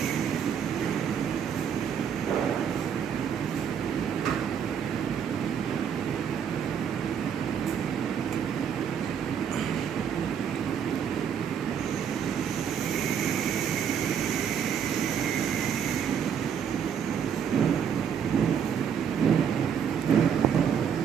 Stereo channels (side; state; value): left; quieter; 7.9 dB